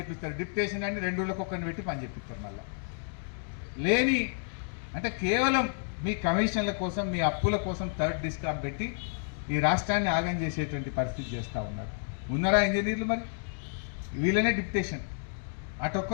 డిప్యుటేషన్ అని 2 ఊళ్ళకి ఒక్కరిని పెట్టి పని చేపిస్తారు. మళ్ళా లేని అంటే కేవలం మీ కమిషన్ల కోసం, మీ అప్పుల కోసం థర్డ్ డిస్కామ్ పెట్టి ఈ రాష్ట్రాన్ని ఆగం చేసేటువంటి పరిస్థితి చేస్తూ ఉన్నారు. ఉన్నారా ఇంజనీర్లు? మరి వీళ్ళనే డిప్యుటేషన్,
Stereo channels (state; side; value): silent; right; digital silence